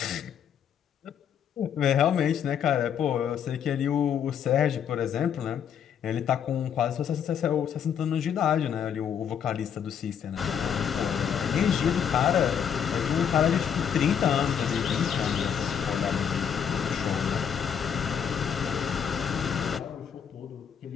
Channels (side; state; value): right; quieter; 8.2 dB